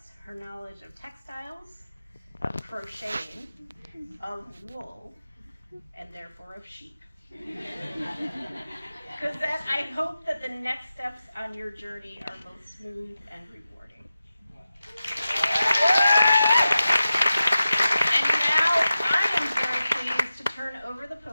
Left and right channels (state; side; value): inverted; both; correlation -0.93